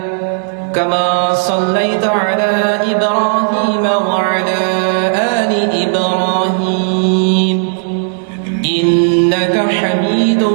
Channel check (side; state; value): left; silent; digital silence